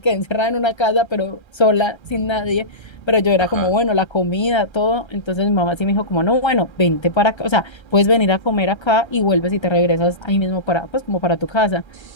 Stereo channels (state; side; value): late; right; 1.3 ms